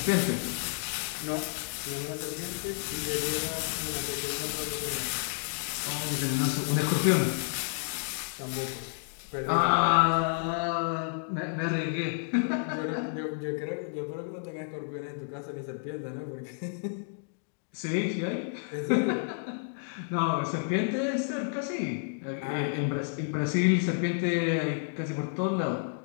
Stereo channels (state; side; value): silent; right; digital silence